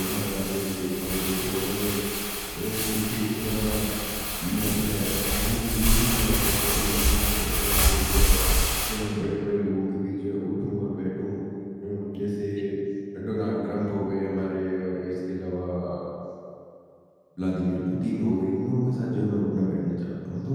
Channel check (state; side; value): identical; both; correlation 1.00